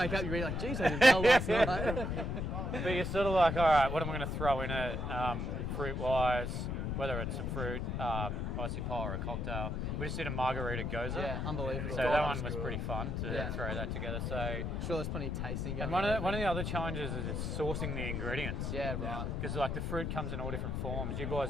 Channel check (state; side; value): noise; left; rumble, 1 dB below the sound